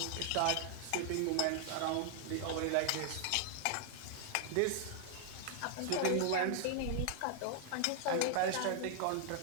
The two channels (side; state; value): both; different; correlation 0.00